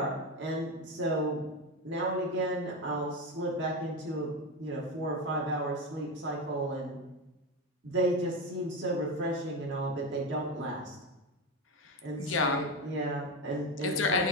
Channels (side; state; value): both; normal; correlation 0.16